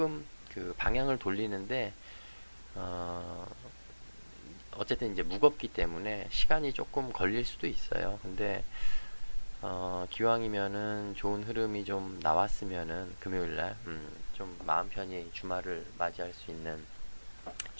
그 방향을 돌리는데 어, 어쨌든 이제 무겁기 때문에 시간이 조금 걸릴 수도 있어요. 근데 기왕이면은 좋은 흐름이 좀 나왔으면은 금요일날 좀 마음 편히 주말을 맞이할 수 있는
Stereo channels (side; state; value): both; inverted; correlation -1.00